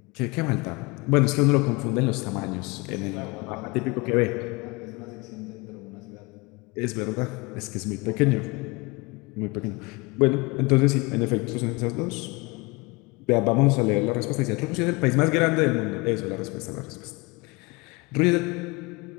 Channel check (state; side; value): quieter; right; 26.0 dB